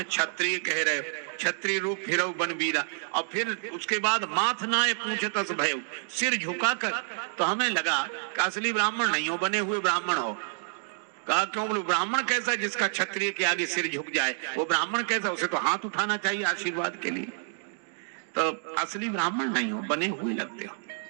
क्षत्रिय कह रहे हो, क्षत्रिय रूप फिरऊ बनवीरा। और फिर उसके बाद माथ नाय पूछतस भयऊ, सिर झुकाकर। तो हमें लगा कि असली ब्राह्मण नहीं हो, बने हुए ब्राह्मण हो। कहा क्यों? बोले ब्राह्मण कैसा जिसका क्षत्रिय के आगे सिर झुक जाए? वो ब्राह्मण कैसा? उसे तो हाथ उठाना चाहिए आशीर्वाद के लिए। तो असली ब्राह्मण नहीं हो, बने हुए लगते हो।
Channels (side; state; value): left; silent; digital silence